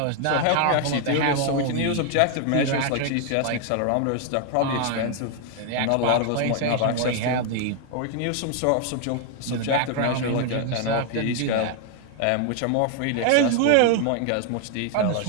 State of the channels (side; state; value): both; different; correlation 0.00